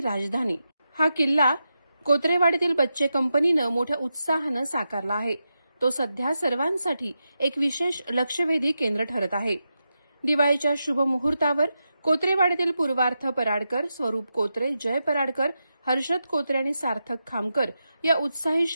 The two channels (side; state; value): both; inverted; correlation -0.88